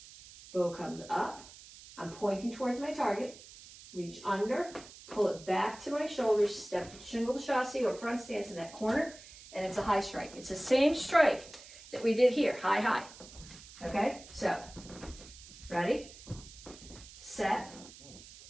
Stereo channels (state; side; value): noise; right; hiss, 18 dB below the sound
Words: bow comes up, I'm pointing towards my target, reach under, pull it back to my shoulders, step to shingle chassis or front stance in that corner, and it's a high strike. It's the same strike that we did here, high, high. Okay, so, ready, set,